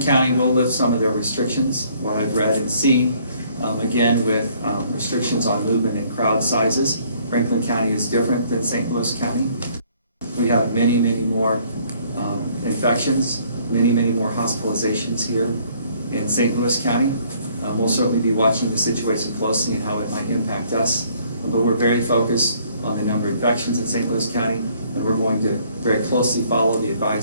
will lift some of their restrictions, what I've read and seen, again with restrictions on movement and crowd sizes. Franklin County is different than St. Louis County. We have many, many more infections, many, many more hospitalizations here in St. Louis County. We'll certainly be watching the situation closely and how it might impact us, but we're very focused on the number of infections in St. Louis County, and we're going to very closely follow the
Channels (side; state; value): both; inverted; correlation -0.62